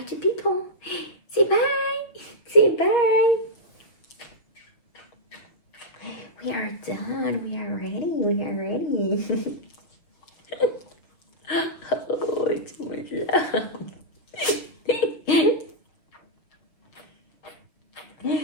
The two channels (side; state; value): right; late; 6.6 ms